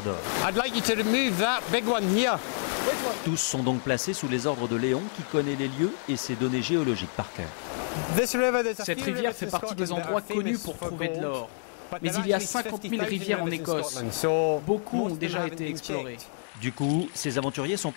d'or. Tous sont donc placés sous les ordres de Léon, qui connaît les lieux et ses données géologiques par cœur. Cette rivière fait partie des endroits connus pour trouver de l'or. Mais il y a 50 000 rivières en Écosse. Beaucoup ont déjà été explorées. Du coup, ces aventuriers sont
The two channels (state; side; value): silent; right; 59 dB below the other